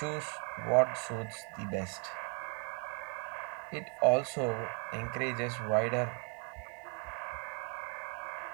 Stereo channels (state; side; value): quieter; left; 38.2 dB